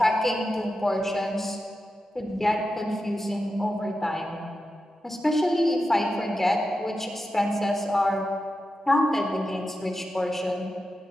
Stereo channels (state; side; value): normal; both; correlation 0.90